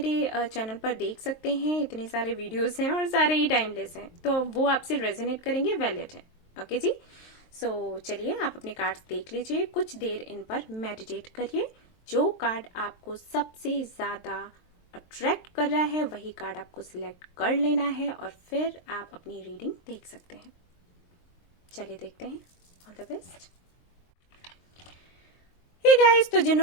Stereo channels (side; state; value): right; late; 23 ms